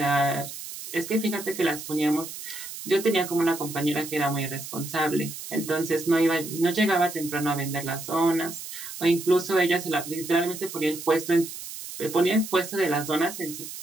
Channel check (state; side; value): noise; right; hiss, 10 dB below the sound